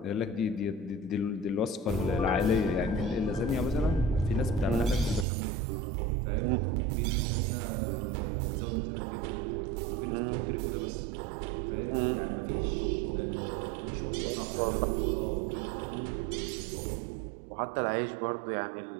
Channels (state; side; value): drops out; left; at 5.2 s